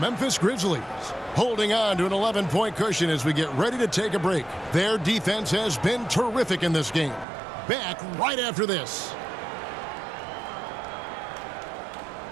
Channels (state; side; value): drops out; left; at 7.2 s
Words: Grizzlies holding on to an 11-point cushion as we get ready to take a break. Their defense has been terrific in this game. Back right after this.